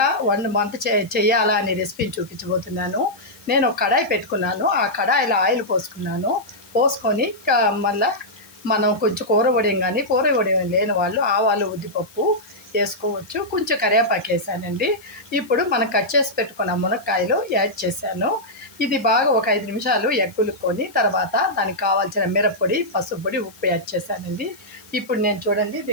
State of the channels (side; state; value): left; noise; hiss, 24 dB below the sound